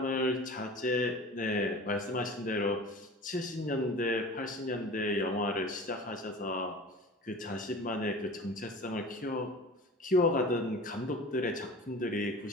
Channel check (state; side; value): normal; both; correlation 0.38